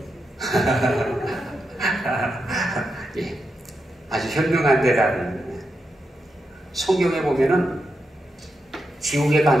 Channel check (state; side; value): normal; both; correlation 0.86